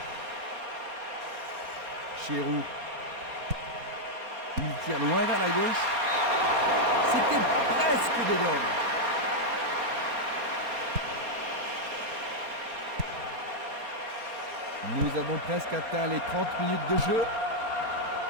Giroud. Il tire loin vers la gauche. C'était presque dedans. Nous avons presque atteint les 30 minutes de jeu.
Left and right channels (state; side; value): late; left; 4.3 ms